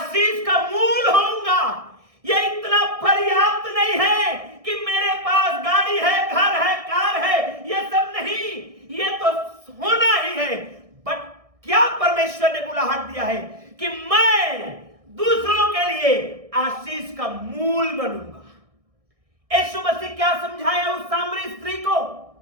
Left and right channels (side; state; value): left; late; 1.6 ms